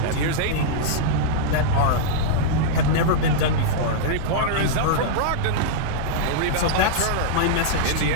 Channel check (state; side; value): different; both; correlation -0.02